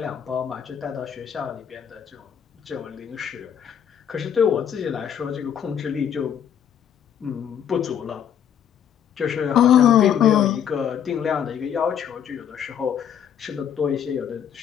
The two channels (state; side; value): quieter; right; 8.8 dB